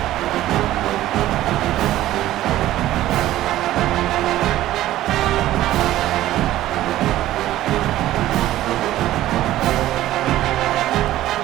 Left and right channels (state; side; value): quieter; left; 14.4 dB